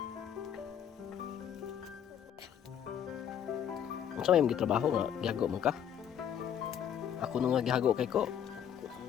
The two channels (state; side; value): quieter; right; 9.1 dB